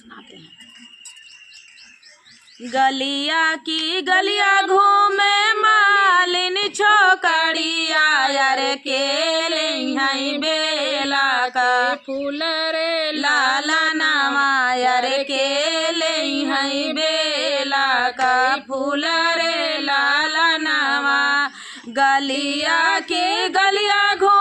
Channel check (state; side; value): identical; both; correlation 1.00